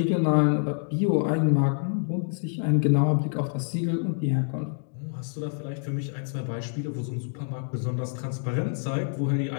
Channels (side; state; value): right; silent; 60 dB below the other